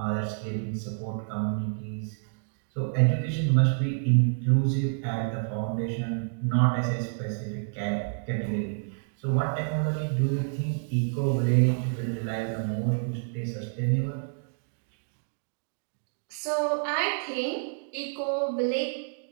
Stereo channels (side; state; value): left; silent; digital silence